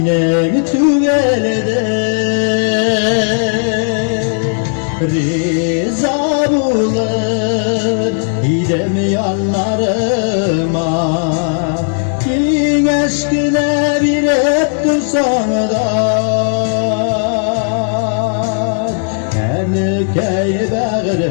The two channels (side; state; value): right; silent; digital silence